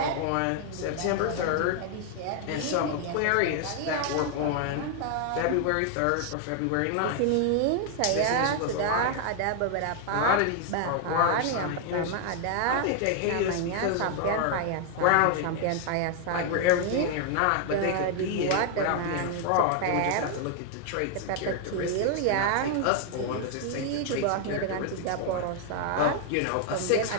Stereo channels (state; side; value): different; both; correlation 0.00